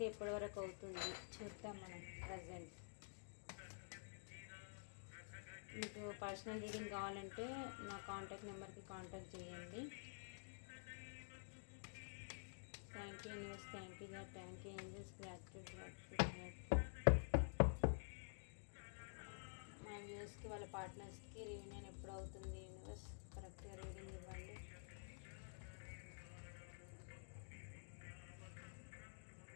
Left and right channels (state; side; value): silent; right; digital silence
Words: ఎప్పటి వరకు అవుతుంది చూద్దాం మనం. ప్రజెంట్ మీకు పర్సనల్ రీడింగ్ కావాలంటే నా కాంటాక్ట్ నెంబర్కి కాంటాక్ట్ చేయండి. Thank you news, thank you God, thank you angels, gratitude gratitude gratitude. మా వ్యూస్కి వాళ్ళ పార్ట్నర్స్కి రీయూనియన్ ఎప్పుడు అవుతుంది యూనివర్స్? కరెక్ట్గా రీడింగ్ ఇవ్వండి.